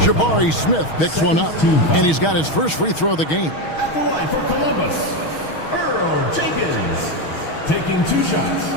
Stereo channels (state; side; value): late; right; 6.3 ms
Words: Jabari Smith picks one up, and he's got his first free throw of the game. At the line for Columbus, Earl Jenkins, taking 2 shots.